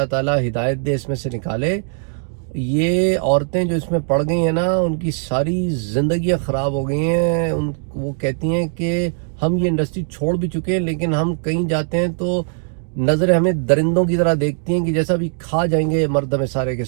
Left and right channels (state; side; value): silent; left; digital silence